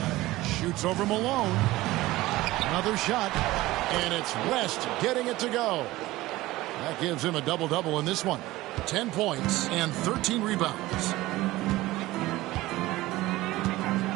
Shoots over Malone. Another shot. And it's West getting it to go. That gives him a double-double in this one. 10 points and 13 rebounds.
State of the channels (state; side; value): quieter; left; 18.1 dB